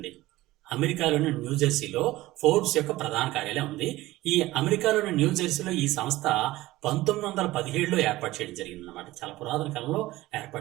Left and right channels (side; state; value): left; quieter; 17.6 dB